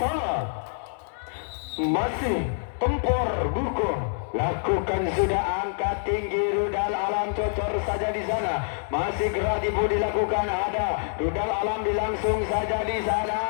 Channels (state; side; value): silent; right; digital silence